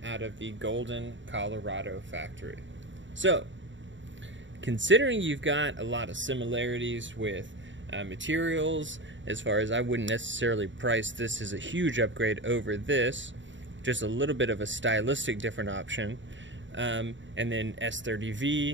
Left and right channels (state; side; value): late; left; 0.54 ms